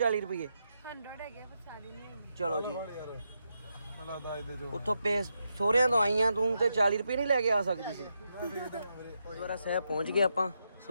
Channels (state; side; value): inverted; both; correlation -0.83